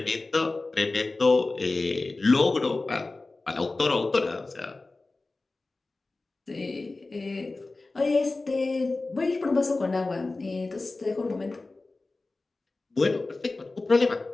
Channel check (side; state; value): right; quieter; 3.3 dB